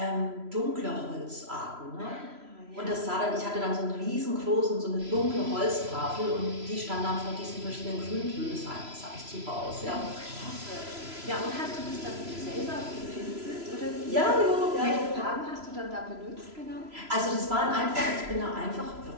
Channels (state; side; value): late; left; 3.0 ms